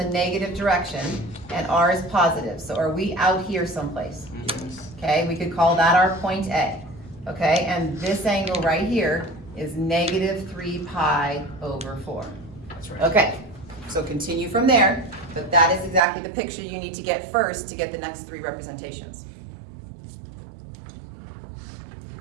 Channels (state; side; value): drops out; left; at 16.0 s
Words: negative direction, and r is positive. So are we out here someplace? Okay, we could call that our point A. Okay, and this angle right here is -3 pi over 4. That's right. Okay, so continue from there, but that is exactly the picture you need to get first to get the next 3 representations.